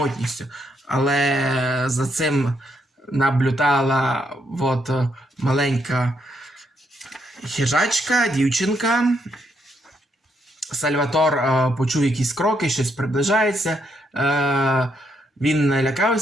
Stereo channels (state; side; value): normal; both; correlation 0.76